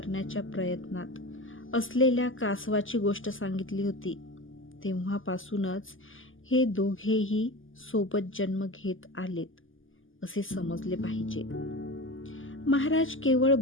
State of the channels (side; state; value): right; late; 0.58 ms